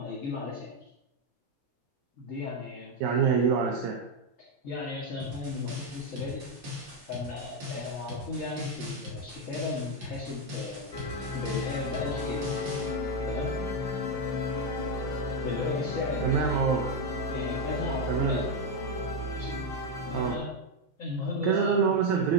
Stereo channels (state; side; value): normal; both; correlation 0.04